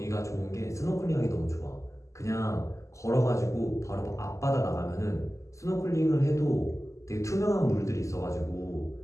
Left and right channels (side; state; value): right; late; 0.15 ms